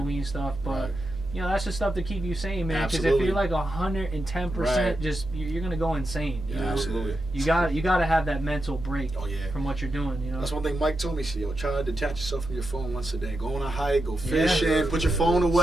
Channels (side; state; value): right; noise; hum, 18 dB below the sound